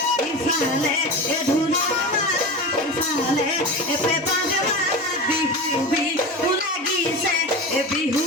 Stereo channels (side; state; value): both; normal; correlation 0.27